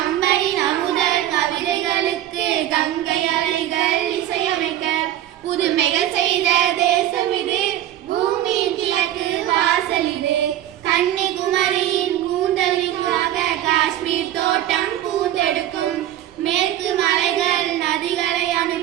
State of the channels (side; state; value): left; quieter; 12.6 dB